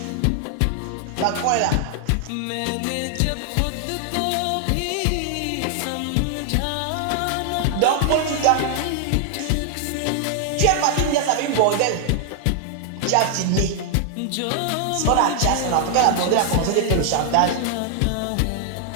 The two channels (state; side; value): different; both; correlation 0.00